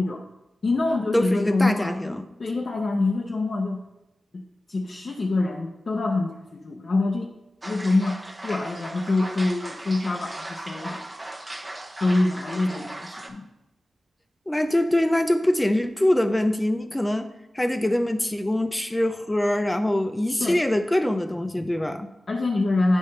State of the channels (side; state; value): both; normal; correlation 0.97